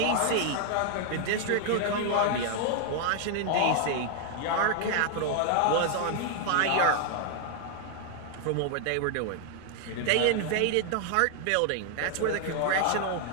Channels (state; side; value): different; both; correlation 0.00